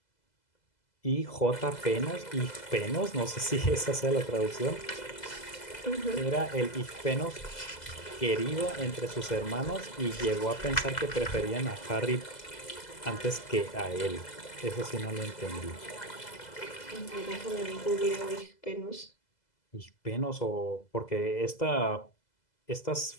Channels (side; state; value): right; late; 2.0 ms